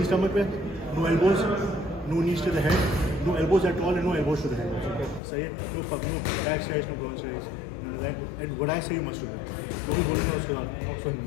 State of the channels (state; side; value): drops out; right; at 5.2 s